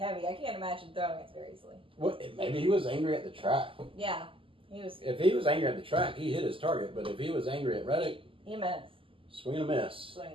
I can't imagine throwing it very easily. Maybe he was angry at the track. Yeah. If he was angry at the track, he hit his target. But if he was angry at Reddick, he missed. Swing and a miss. Swing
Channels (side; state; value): left; late; 0.25 ms